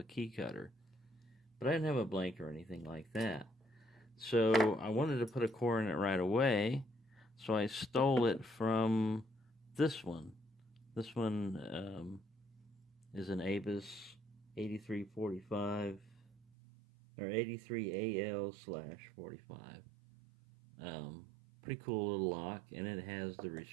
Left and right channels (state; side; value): drops out; left; at 16.4 s